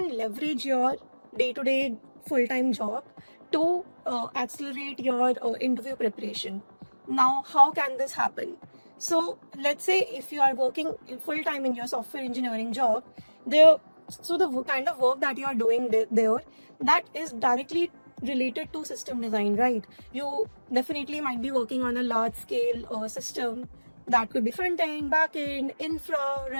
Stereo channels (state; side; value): inverted; both; correlation -1.00